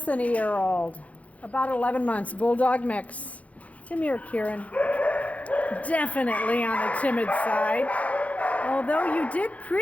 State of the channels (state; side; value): late; right; 0.067 ms